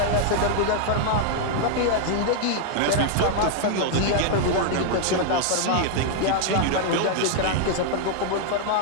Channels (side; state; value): both; different; correlation 0.00